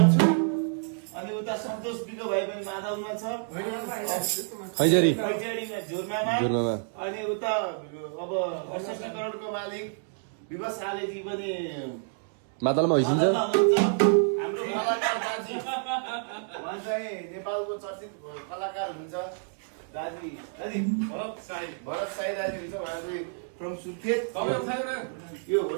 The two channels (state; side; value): silent; left; 59 dB below the other